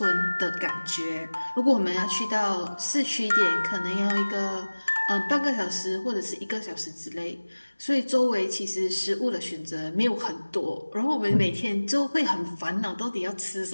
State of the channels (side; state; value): both; inverted; correlation -1.00